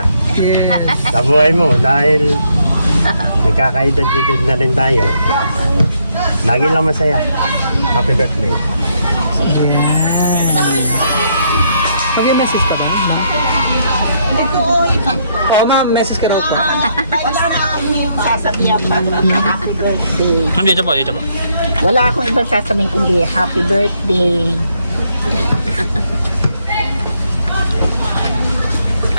Yes. sa buhay mo dahil nagkakaedad-edad na rin tayo. Lagi lang masaya. Happy birthday. Mag-message ka ba? Oo ma'am, message ka daw po. Sasabihan pa happy birthday. Kam dito po. Wala akong ibang sasabihin kundi happy birthday.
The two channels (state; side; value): inverted; both; correlation -0.74